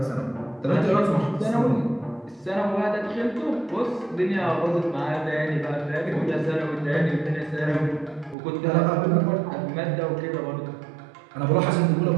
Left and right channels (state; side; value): drops out; left; at 8.3 s